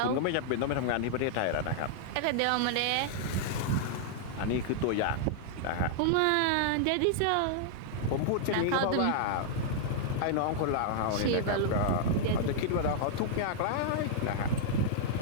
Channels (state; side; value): different; both; correlation -0.01